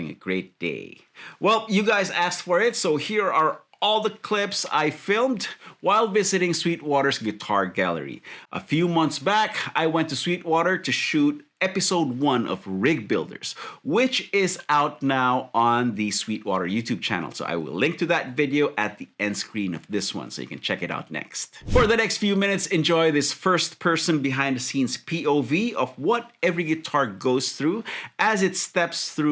a great day. Well, you guys asked for it, so here are all the clips I filmed while visiting Sweetwater's Guitar Gallery. A few months back, I went to Sweetwater to shoot episode 1 of Rig Builders, which is out now on the Sweetwater YouTube channel. So I will link to that video at the end screen of this one so you can check it out next. For the next few minutes, enjoy this first person behind the scenes POV of what every guitar goes through as it steps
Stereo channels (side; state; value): both; identical; correlation 1.00